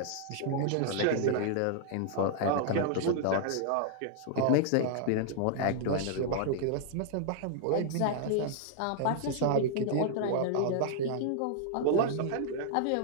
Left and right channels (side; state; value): both; different; correlation -0.01